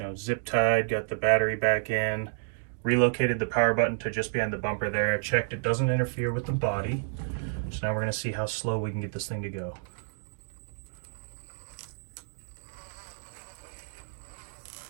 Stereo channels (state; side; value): silent; left; digital silence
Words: zip tied, got the battery back in, relocated the power button to just behind the bumper there. I checked it doesn't interfere with the body. So now we're going to see how slow we can get this thing to go.